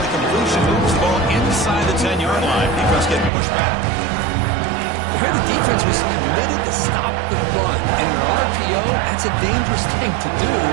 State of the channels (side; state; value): left; drops out; at 3.3 s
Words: the completion moves the ball inside the 10-yard line. Defense getting pushed back. Here the defense was committed to stop the run. And in an RPO, that's a dangerous thing to do.